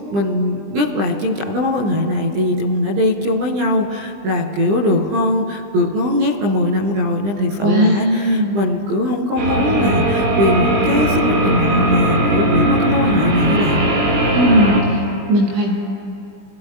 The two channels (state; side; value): late; left; 20 ms